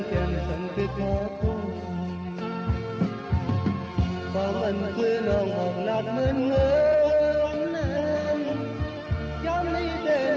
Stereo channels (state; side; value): identical; both; correlation 1.00